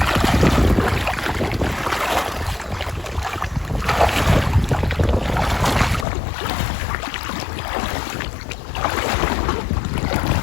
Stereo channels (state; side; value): drops out; right; at 6.1 s